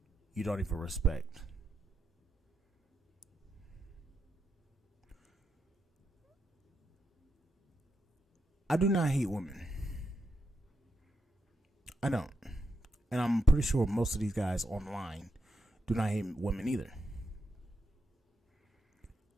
you don't even respect? I do not hate women. I don't. And I'm pretty sure most of these guys online do not hate women either.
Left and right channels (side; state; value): both; normal; correlation 0.83